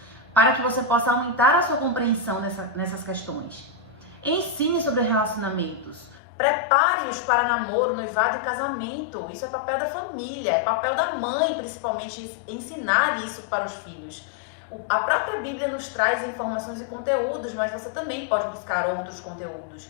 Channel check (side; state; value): right; drops out; at 6.2 s